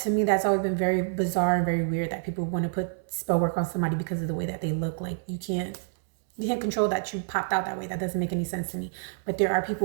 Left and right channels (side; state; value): left; silent; digital silence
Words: me, that's always been very bizarre and very weird that people want to put spell work on somebody because of the way that they look. Like you can't control that you popped out that way. That doesn't make any sense to me. But there are